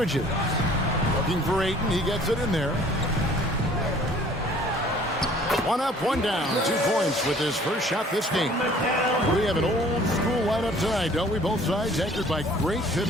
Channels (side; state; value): both; normal; correlation 0.53